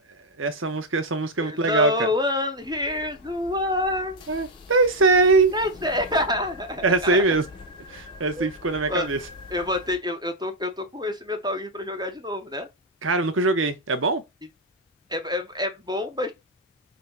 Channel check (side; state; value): both; normal; correlation 0.02